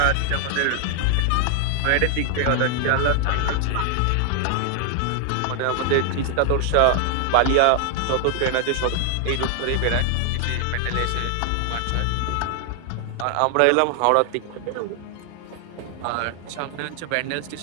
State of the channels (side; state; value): both; different; correlation 0.00